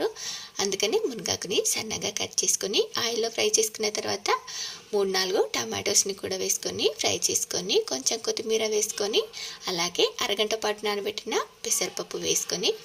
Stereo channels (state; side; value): identical; both; correlation 1.00